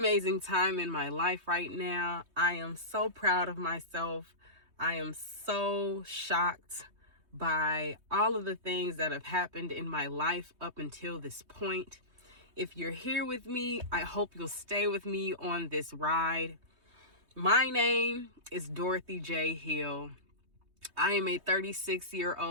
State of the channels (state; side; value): late; left; 3.2 ms